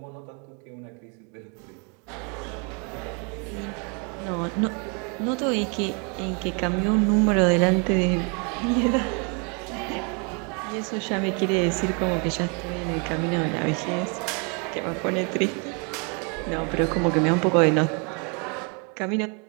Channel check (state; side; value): quieter; left; 35.0 dB